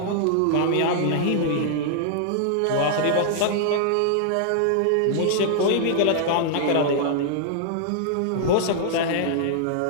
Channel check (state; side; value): different; both; correlation -0.01